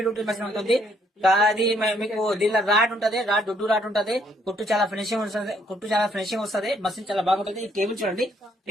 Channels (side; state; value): both; normal; correlation 0.68